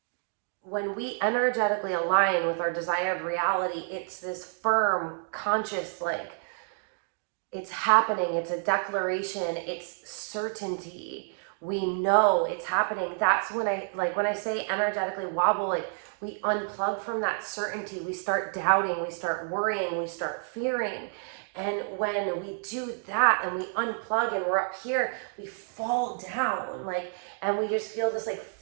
when we energetically align with our desired reality, it's this firm, conscious, like, it's happening, it's a declaration, it's certainty. We know it's happening. That's when when I say energetically wobble, like, we unplug from that certainty. We start doubting, we start worrying, we start fearing. And when we do that and we unplug and we're up here, we fall down, and we just feel this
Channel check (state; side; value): silent; left; 58 dB below the other